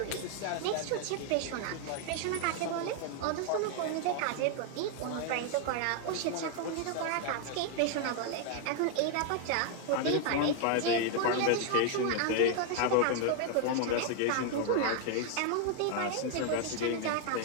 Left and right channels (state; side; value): different; both; correlation 0.00